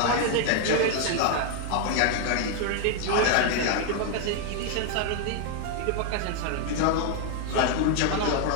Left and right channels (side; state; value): both; different; correlation 0.00